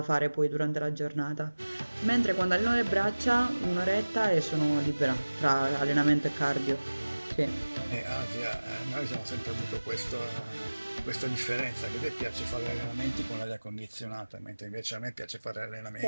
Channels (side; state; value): both; inverted; correlation -1.00